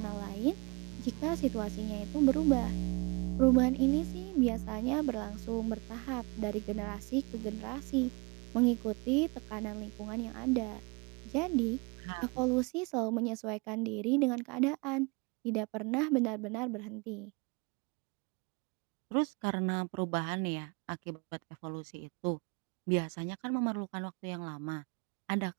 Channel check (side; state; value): left; quieter; 28.9 dB